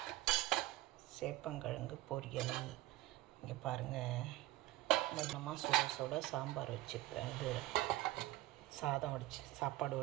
சேப்பங்கிழங்கு பொரியல். இங்கே பாருங்கள், மொத்தமாக சுட சுட சாம்பார் வச்சுப்பேன். இது சாதம் சாப்பாடு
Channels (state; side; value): quieter; left; 17.2 dB